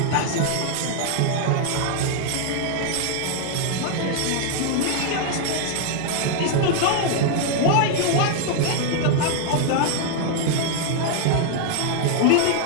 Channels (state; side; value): different; both; correlation 0.00